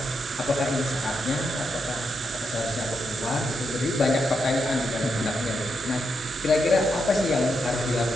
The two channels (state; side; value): normal; both; correlation 0.83